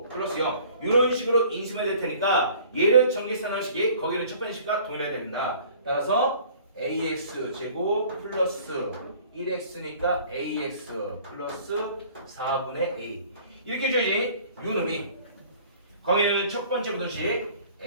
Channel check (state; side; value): inverted; both; correlation -0.51